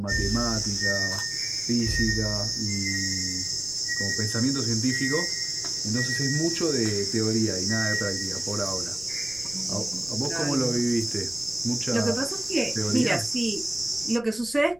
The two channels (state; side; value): noise; left; rumble, 24 dB below the sound